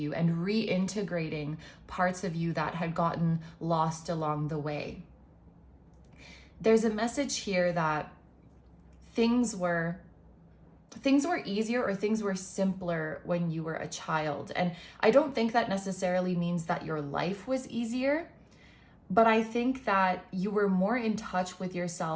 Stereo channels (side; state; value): both; identical; correlation 1.00